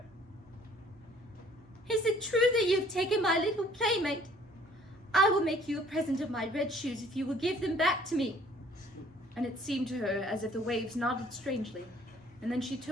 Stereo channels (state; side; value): normal; both; correlation 0.57